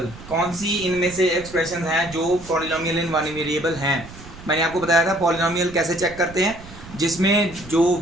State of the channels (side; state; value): right; noise; rumble, 17 dB below the sound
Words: कौन सी इनमें से एक्सप्रेशन हैं जो पॉलिनोमियल इन 1 वेरिएबल हैं। मैंने आपको बताया था पॉलिनोमियल कैसे चेक करते हैं, जिसमें जो